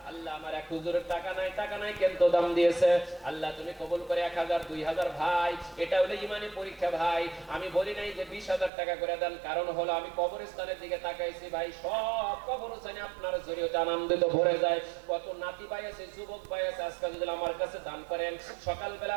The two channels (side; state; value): left; drops out; at 8.7 s